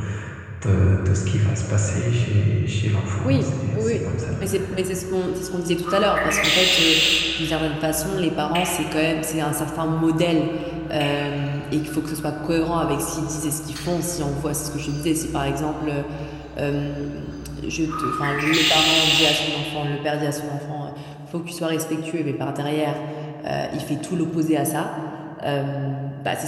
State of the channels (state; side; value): identical; both; correlation 1.00